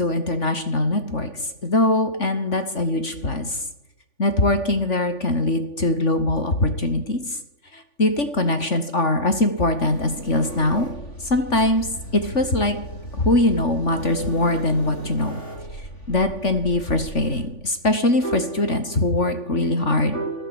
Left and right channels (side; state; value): right; late; 3.5 ms